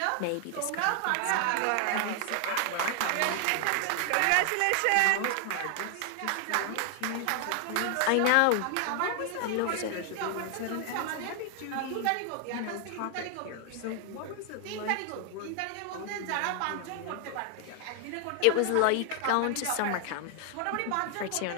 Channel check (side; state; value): both; different; correlation 0.00